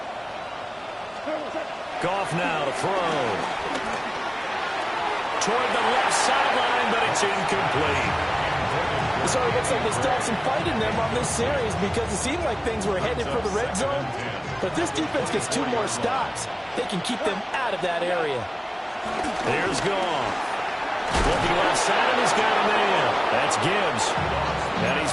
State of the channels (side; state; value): both; identical; correlation 1.00